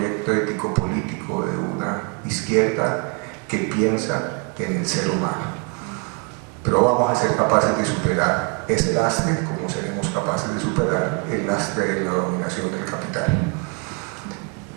ético-político de una izquierda que piensa en el ser humano. Pero vamos a ser capaces de superar ese lastre, como seremos capaces de superar el lastre de la dominación del capital.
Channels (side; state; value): left; quieter; 34.6 dB